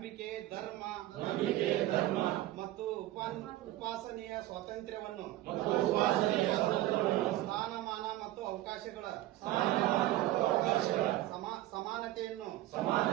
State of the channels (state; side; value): quieter; left; 15.6 dB